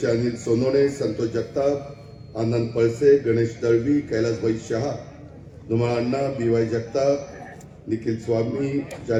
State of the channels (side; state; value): both; identical; correlation 1.00